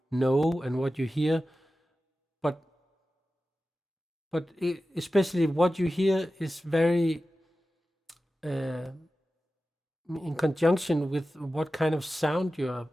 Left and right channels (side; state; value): both; normal; correlation 0.94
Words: know and what you hear, but especially what you hear is very in conjunction with what kind of sound you are